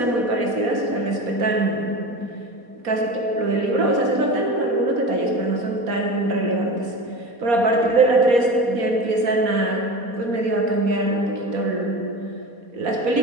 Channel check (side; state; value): left; late; 4.2 ms